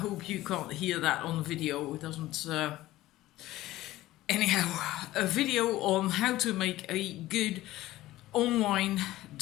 you can't hear that on the video. It doesn't... Anyhow, a video on how to make a good online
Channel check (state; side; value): quieter; right; 16.3 dB